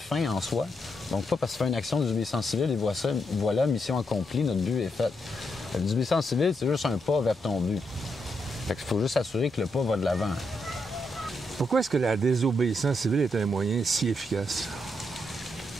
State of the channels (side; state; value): both; normal; correlation 0.80